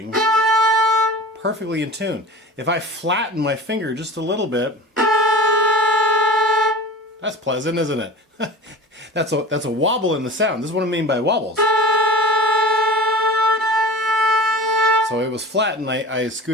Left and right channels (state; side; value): normal; both; correlation 0.37